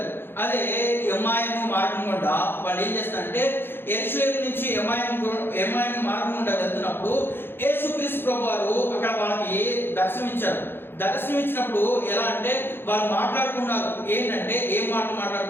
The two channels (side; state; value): right; late; 0.10 ms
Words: అదే ఎమ్మాయిము మార్గం గుండా వాళ్ళు ఏం చేస్తారంటే, యెరూషలేము నుంచి ఎమ్మాయిము మార్గం గుండా వెళ్తున్నప్పుడు యేసుక్రీస్తు ప్రభు వారు అక్కడ వాళ్ళకి దర్శనమిచ్చినప్పుడు ఎలా అంటే, వాళ్ళు మాట్లాడుకున్నారు. ఏంటంటే, ఏం